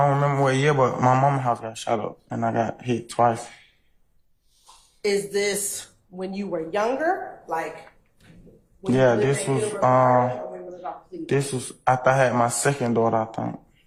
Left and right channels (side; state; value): both; identical; correlation 1.00